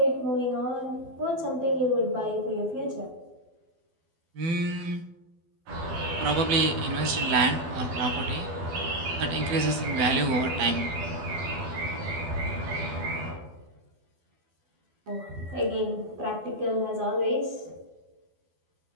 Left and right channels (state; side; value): late; left; 12 ms